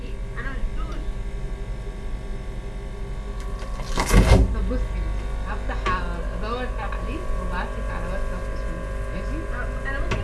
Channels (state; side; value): identical; both; correlation 1.00